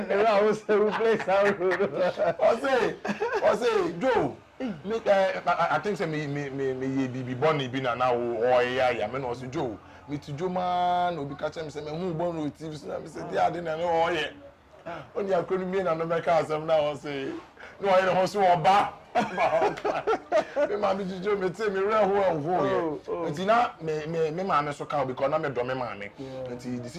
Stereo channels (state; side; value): identical; both; correlation 1.00